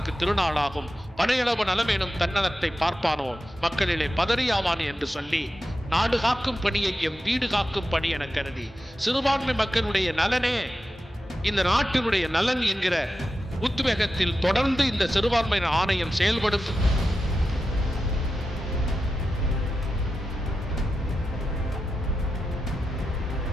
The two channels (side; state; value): both; normal; correlation 0.91